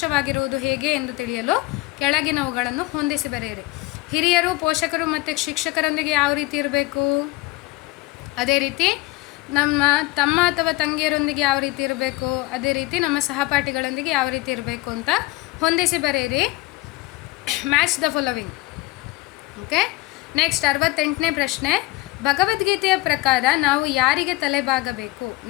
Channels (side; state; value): right; quieter; 19.4 dB